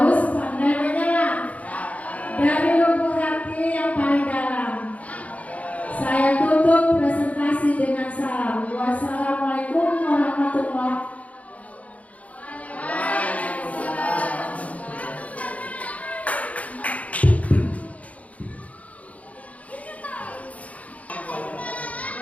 pandai menyelam dari lubuk hati yang paling dalam. Saya tutup presentasi dengan salam. Wassalamualaikum warahmatullahi wabarakatuh.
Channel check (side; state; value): right; late; 0.068 ms